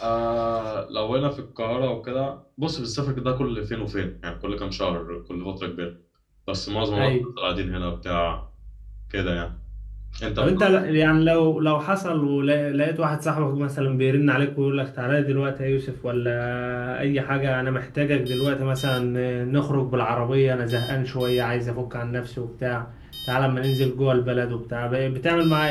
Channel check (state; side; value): identical; both; correlation 1.00